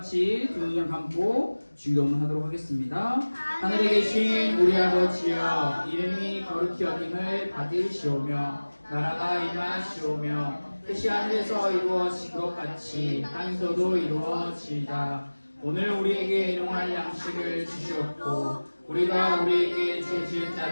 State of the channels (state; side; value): inverted; both; correlation -1.00